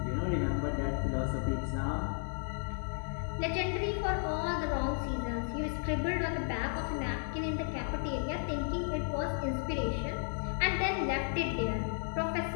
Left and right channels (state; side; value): silent; right; 55 dB below the other